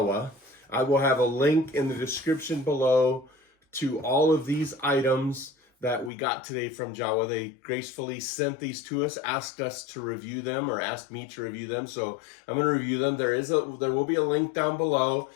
I will have a link in the description below to all of these items that we got today from Jowua. They gracefully sent these to us, asked us to review them, or asked me to review them. So I'm going to review them. There will be a link down below.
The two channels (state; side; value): drops out; right; at 6.1 s